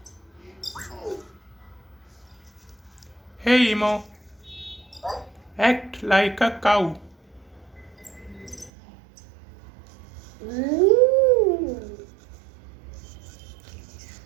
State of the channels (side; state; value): left; drops out; at 8.7 s